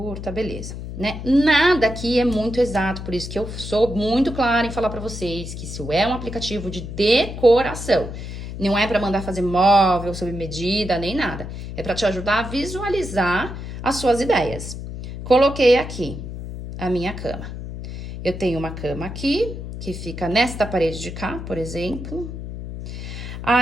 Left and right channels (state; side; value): noise; left; hum, 8 dB below the sound